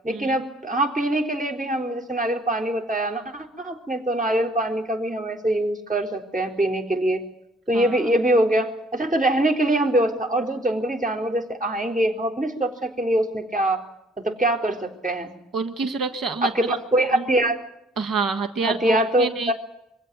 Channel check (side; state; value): both; normal; correlation 0.60